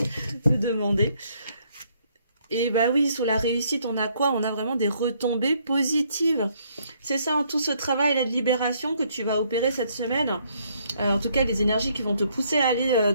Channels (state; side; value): inverted; both; correlation -0.69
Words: de demander. Et oui, sous la réussite, on a quoi? On a vraiment des retombées positives. C'est ça, tout ce travail de libération que tu vas opérer cette semaine. En tout cas, les énergies qui vont te pousser à aller